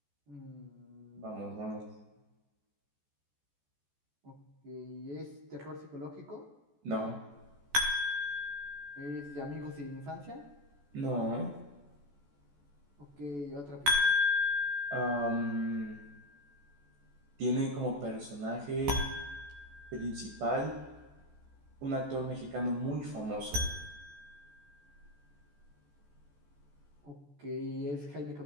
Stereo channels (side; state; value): left; late; 14 ms